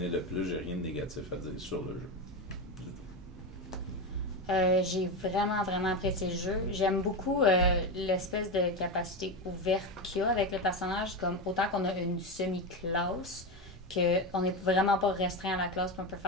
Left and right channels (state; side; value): normal; both; correlation 0.16